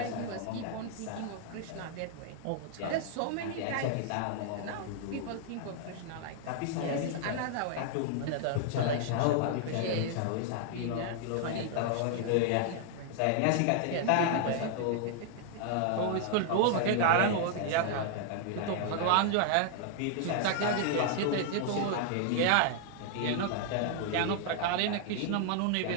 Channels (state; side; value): different; both; correlation -0.01